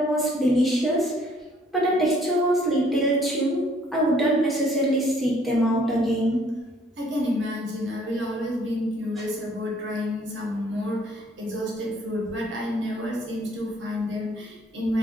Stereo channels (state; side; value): normal; both; correlation 0.61